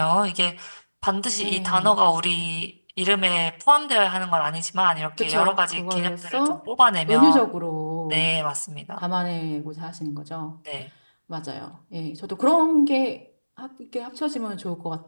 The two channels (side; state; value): both; inverted; correlation -1.00